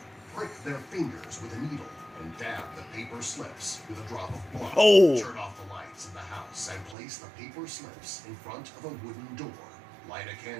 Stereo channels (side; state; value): left; drops out; at 7.0 s